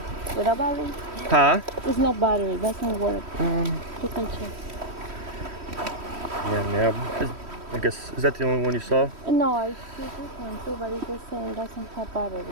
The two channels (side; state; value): left; late; 3.1 ms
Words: Without battery? Huh? There's no battery. Doesn't work. You can check. Yeah. I guess, is that the only one you saw? No, I see this one too, but it's the same. It doesn't have battery.